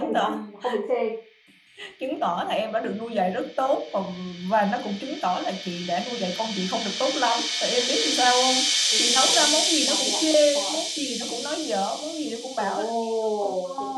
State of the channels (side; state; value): both; identical; correlation 1.00